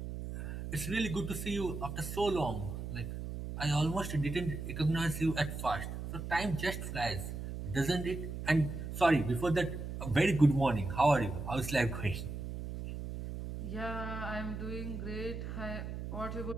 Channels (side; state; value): right; noise; hum, 6 dB below the sound